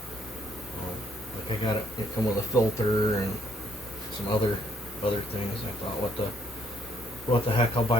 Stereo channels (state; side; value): normal; both; correlation 0.69